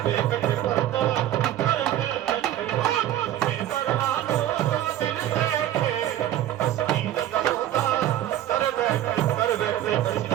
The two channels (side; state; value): left; quieter; 12.8 dB